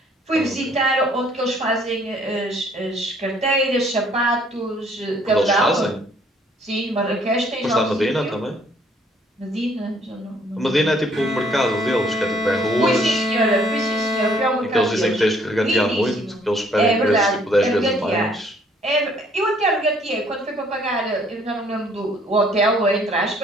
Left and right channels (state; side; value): normal; both; correlation 0.62